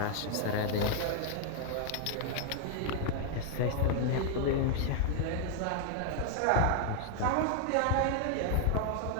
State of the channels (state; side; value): different; both; correlation 0.00